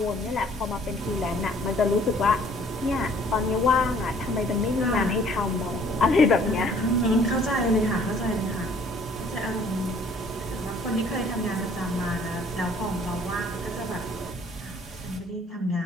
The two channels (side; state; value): both; normal; correlation 0.57